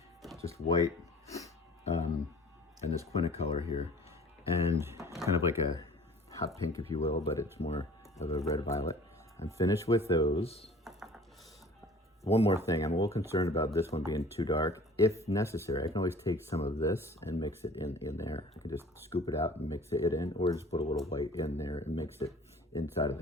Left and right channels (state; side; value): normal; both; correlation 0.48